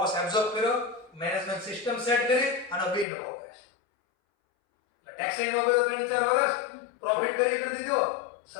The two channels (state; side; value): drops out; right; at 3.1 s